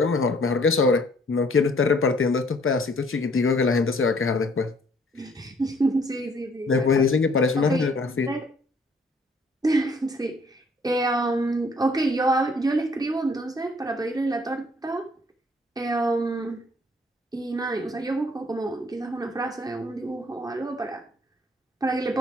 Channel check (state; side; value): normal; both; correlation 0.61